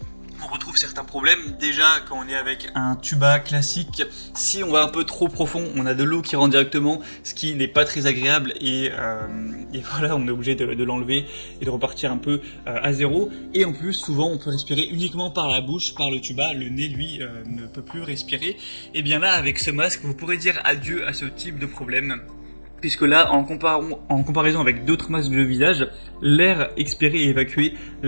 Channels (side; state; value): both; inverted; correlation -1.00